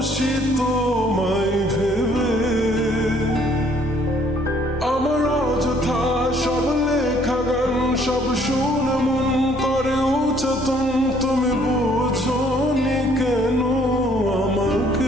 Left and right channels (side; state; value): both; normal; correlation 0.62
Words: তোমায় ভেবে। আমার অযথা সব লেখা গান সব শুনে মন করে উচ্চতন, তুমি বোঝনি কেন